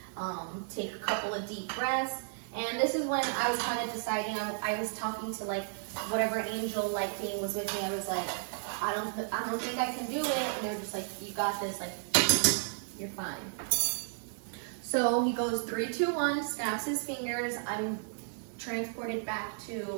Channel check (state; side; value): silent; left; digital silence